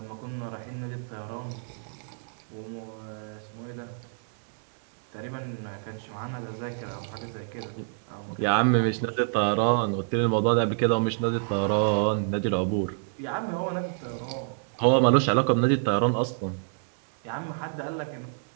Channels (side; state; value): left; silent; digital silence